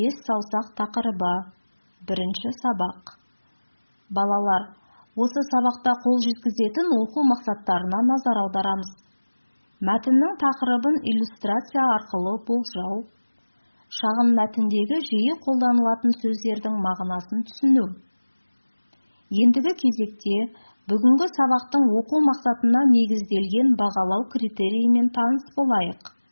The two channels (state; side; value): inverted; both; correlation -1.00